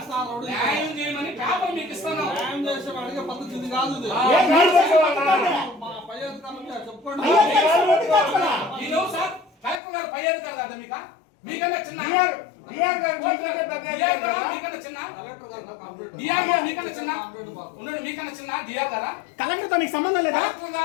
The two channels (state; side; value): drops out; right; at 9.8 s